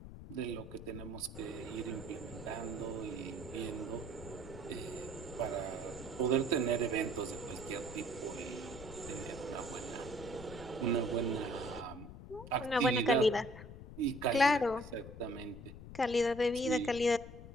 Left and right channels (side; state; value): left; noise; rumble, 13 dB below the sound